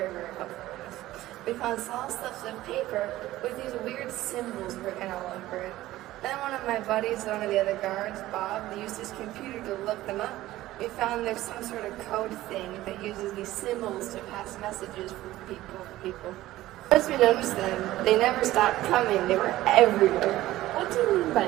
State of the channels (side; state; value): left; quieter; 15.9 dB